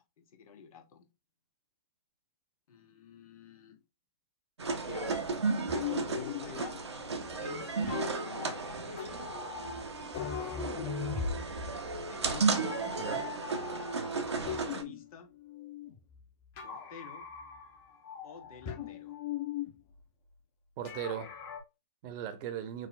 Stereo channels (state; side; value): inverted; both; correlation -0.33